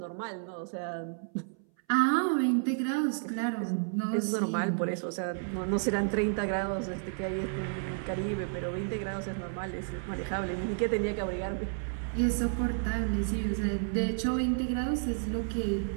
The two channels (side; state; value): left; silent; 57 dB below the other